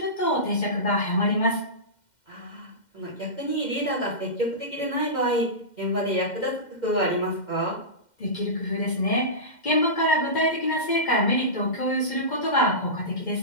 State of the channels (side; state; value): right; late; 2.1 ms